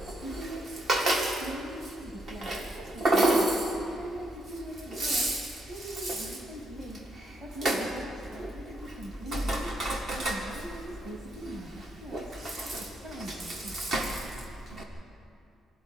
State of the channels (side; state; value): both; normal; correlation 0.76